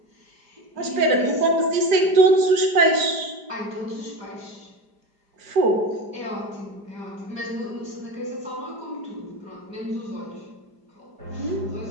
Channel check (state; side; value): late; left; 4.9 ms